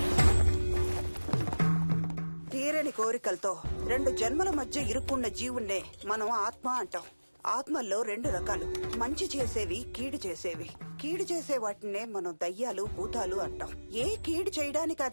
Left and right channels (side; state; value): both; inverted; correlation -1.00